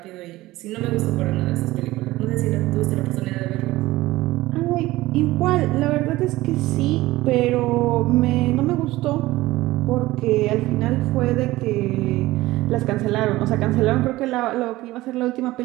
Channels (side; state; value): left; quieter; 18.0 dB